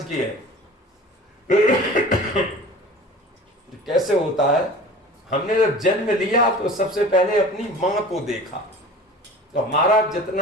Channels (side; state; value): both; normal; correlation 0.40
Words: की है। कैसे होता है, हमने जब जन्म लिया तो सबसे पहले अपनी माँ को देखा, तो हमारा